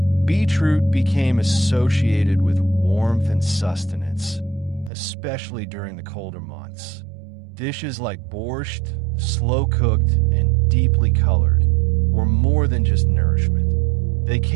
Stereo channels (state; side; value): drops out; left; at 4.9 s